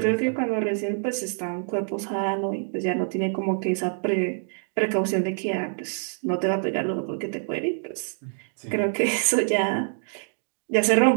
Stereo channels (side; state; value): left; silent; digital silence